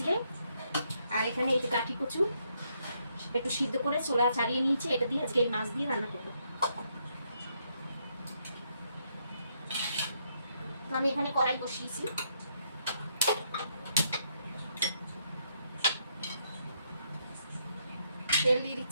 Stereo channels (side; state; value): both; inverted; correlation -0.75